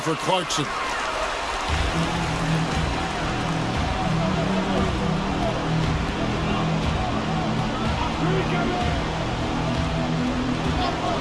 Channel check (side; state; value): both; identical; correlation 1.00